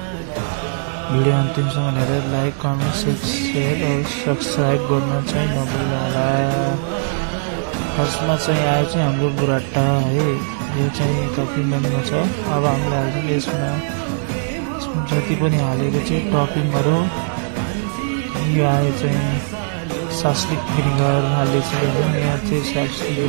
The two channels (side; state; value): left; silent; 66 dB below the other